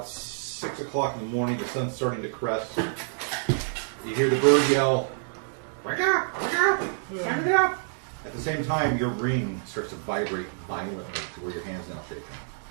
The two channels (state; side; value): silent; left; digital silence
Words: 6 o'clock in the morning. The sun's starting to crest. You hear the bird yell, "Wake up! Wake up! Wake up!" At the same time, your ring starts to vibrate violently to where your hand's now shaking.